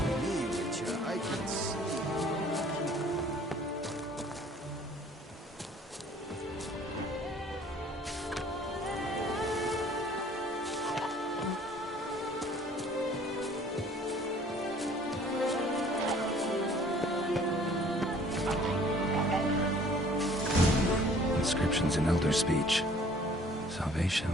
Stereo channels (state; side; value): normal; both; correlation 0.54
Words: me, Witcher. I can see. Inscriptions in Elder speech. Salvation